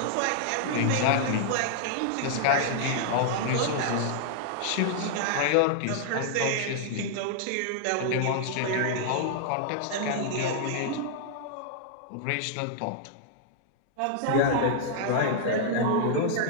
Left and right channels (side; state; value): both; different; correlation -0.01